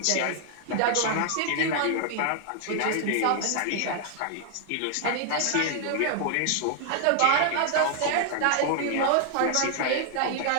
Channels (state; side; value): different; both; correlation 0.00